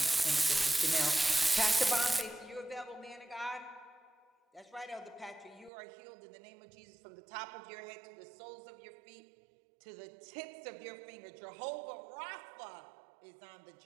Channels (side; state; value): left; drops out; at 5.7 s